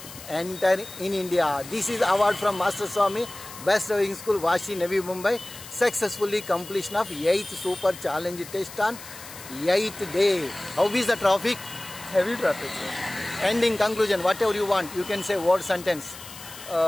enter in India. This is award from Master Swami, Best Driving School, Vashi, Navi Mumbai. Successfully completion of 8th super challenge test on 8th day. How is the traffic? Heavy traffic, sir. Ending conclusion, whatever you want, you can say word sentence.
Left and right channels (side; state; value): left; noise; hiss, 15 dB below the sound